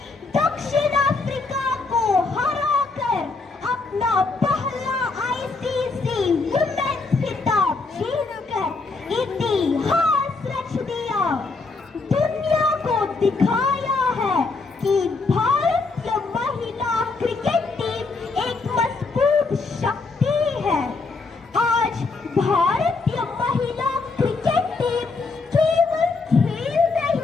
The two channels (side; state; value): right; quieter; 4.0 dB